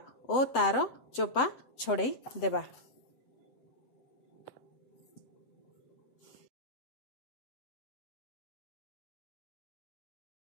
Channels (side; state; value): right; late; 7.8 ms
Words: ओ तार चोपा छड़े देबा।